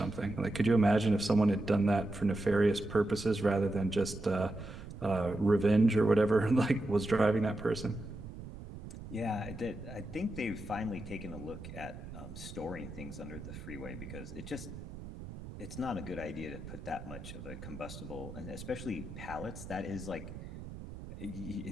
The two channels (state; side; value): noise; right; rumble, 12 dB below the sound